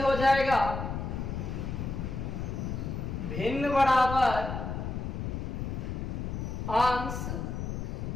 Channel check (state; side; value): noise; left; rumble, 4 dB below the sound